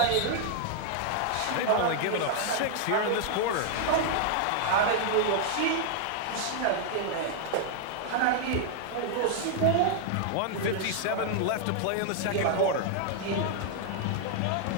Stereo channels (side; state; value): both; different; correlation 0.00